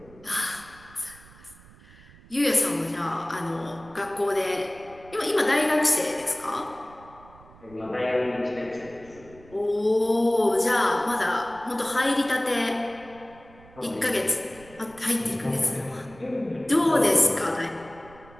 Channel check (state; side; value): noise; right; rumble, 23 dB below the sound